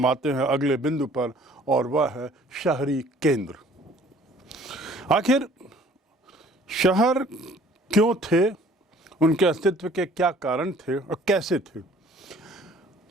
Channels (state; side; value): normal; both; correlation 0.54